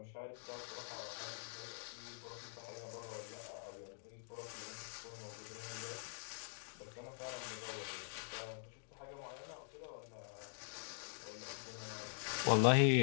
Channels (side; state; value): right; silent; digital silence